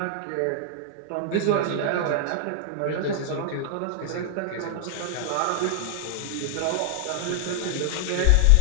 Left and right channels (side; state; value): both; different; correlation 0.00